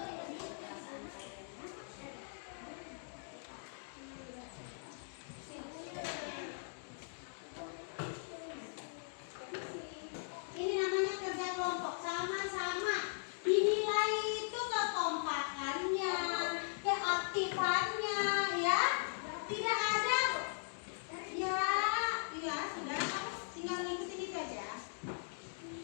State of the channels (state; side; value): silent; right; digital silence